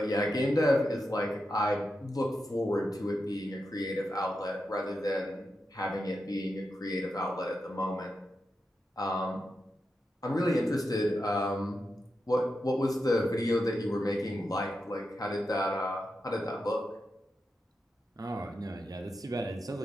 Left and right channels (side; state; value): both; normal; correlation 0.88